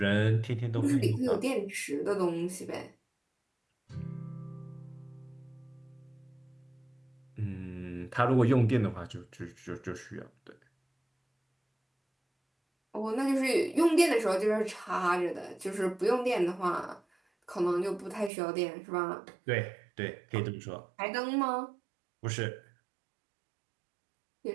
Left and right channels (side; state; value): left; drops out; at 18.3 s